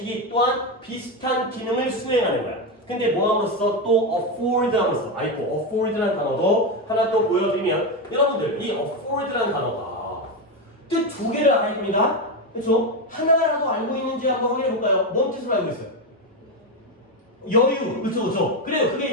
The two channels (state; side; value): normal; both; correlation 0.11